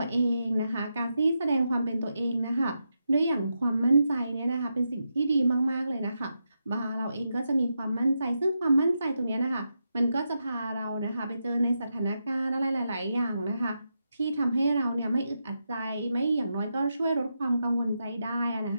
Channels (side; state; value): both; inverted; correlation -0.86